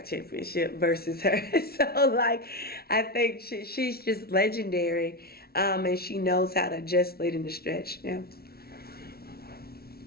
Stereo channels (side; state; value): right; late; 0.44 ms